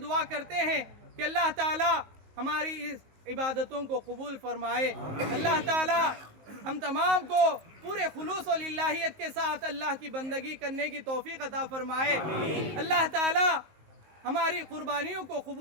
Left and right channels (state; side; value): late; left; 19 ms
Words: دعا کرتے ہیں کہ اللہ تعالی ہماری اس عبادتوں کو قبول فرمائے، اللہ تعالی ہم تمام کو پورے خلوص و للہیت کے ساتھ اللہ کی بندگی کرنے کی توفیق عطا فرمائے، اللہ تعالی ہماری قربانیوں کو